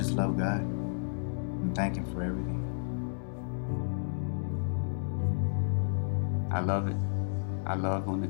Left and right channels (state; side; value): silent; right; digital silence